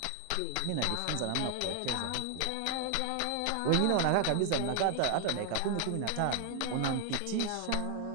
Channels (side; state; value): both; different; correlation 0.00